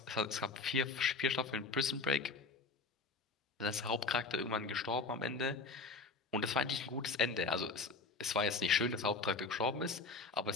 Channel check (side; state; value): right; quieter; 4.0 dB